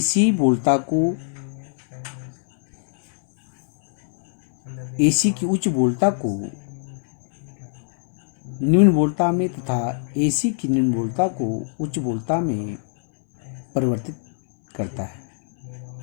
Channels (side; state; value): right; silent; 64 dB below the other